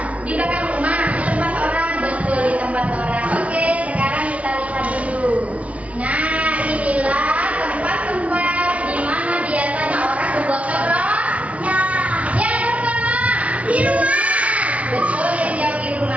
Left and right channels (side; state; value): left; late; 0.065 ms